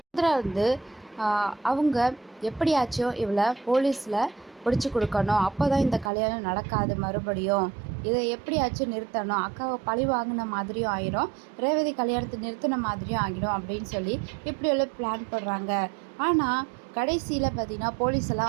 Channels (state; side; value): drops out; left; at 6.1 s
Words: அவங்க எப்படியாச்சும் இவளை போலீஸில் பிடிச்சி கொடுக்கணும், அப்போ தான் இந்த கல்யாணம் நடக்காது, மறுபடியும் இதை எப்படியாச்சும் நிறுத்தணும், அக்காவை பழி வாங்கின மாதிரியும் ஆகிடும், ரேவதி கல்யாணத்தை நிறுத்தின மாதிரியும் ஆகிடும் அப்படின்னு சொல்லி இப்படியெல்லாம் பிளான் பண்ணுறாங்க. ஆனால் கடைசியில் பார்த்திங்கன்னா